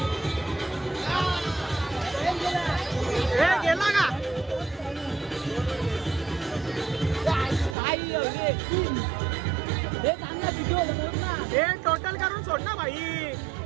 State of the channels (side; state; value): left; drops out; at 7.8 s